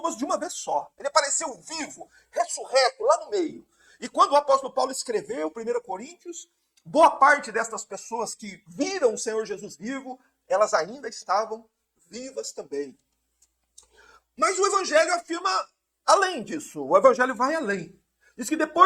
de uma vez só. Ele apareceu vivo, ressurreto, lá no meio. E quando o apóstolo Paulo escreveu 1 Coríntios, boa parte destas pessoas que viram o Senhor Jesus vivo, elas ainda estavam vivas também. Mas o Evangelho afirma além disso. O Evangelho vai além. Diz que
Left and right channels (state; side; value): identical; both; correlation 1.00